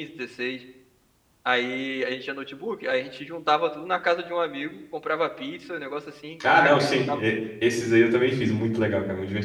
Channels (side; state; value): both; identical; correlation 1.00